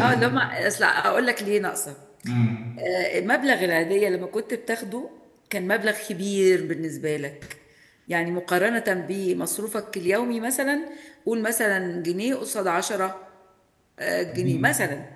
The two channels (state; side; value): identical; both; correlation 1.00